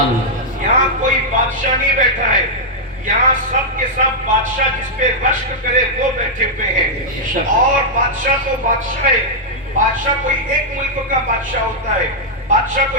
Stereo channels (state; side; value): normal; both; correlation -0.06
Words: यहाँ कोई बादशाह नहीं बैठा है, यहाँ सब के सब बादशाह जिस पे रश्क करे वो बैठे हुए हैं। और बादशाह तो बादशाह है, बादशाह कोई एक मुल्क का बादशाह होता है, बादशाह